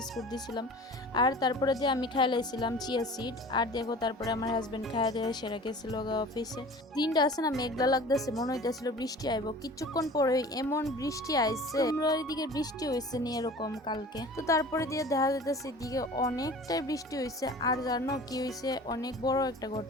দিয়েছিলাম। আর তারপরে দিয়ে আমি খাই লাইছিলাম চিয়া সিড। আর দেখো তারপরে আমার হাজবেন্ড খাইয়া দিয়ে সেরা গেছিল অফিসে। দিনটা আছে না মেঘলা লাগতেছে, মনে হইতেছিল বৃষ্টি আইব। কিছুক্ষণ পরে এমন বৃষ্টি আইছে, তোমরা ওইদিকে বৃষ্টি হয়েছে নি এরকম কালকে? তো তারপরে দিয়ে দেখা যাইতেছে এদিকে অনেকটাই বৃষ্টি হয়েছে। আর জানো কি হয়েছে? অনেক বড় একটা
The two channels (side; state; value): both; normal; correlation 0.42